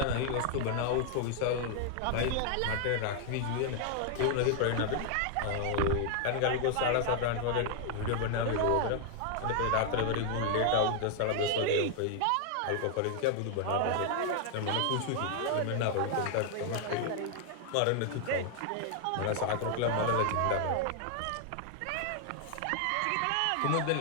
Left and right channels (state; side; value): different; both; correlation 0.00